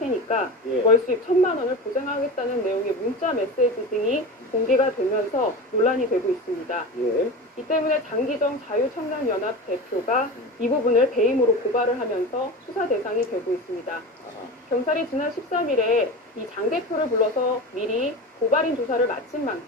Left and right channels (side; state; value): both; normal; correlation 0.28